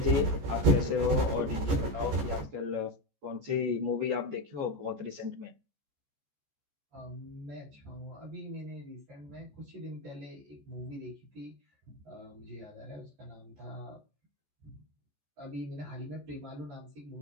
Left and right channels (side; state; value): left; late; 14 ms